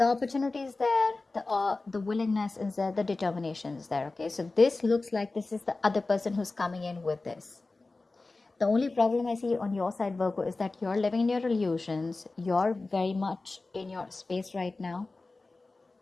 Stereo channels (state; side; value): quieter; right; 3.4 dB